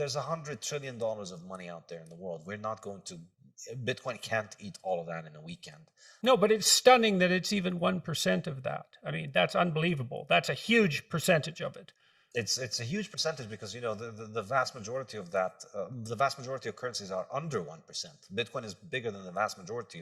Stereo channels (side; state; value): both; identical; correlation 1.00